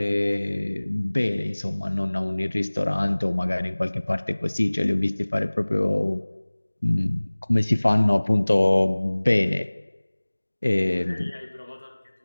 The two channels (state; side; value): inverted; both; correlation -1.00